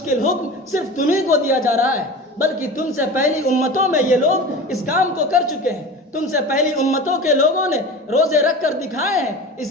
حکم صرف تمہیں کو دیا جا رہا ہے، بلکہ تم سے پہلی امتوں میں یہ لوگ اس کام کو کر چکے ہیں۔ تم سے پہلی امتوں کے لوگوں نے روزے رکھ کر دکھائے ہیں۔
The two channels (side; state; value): both; normal; correlation 0.32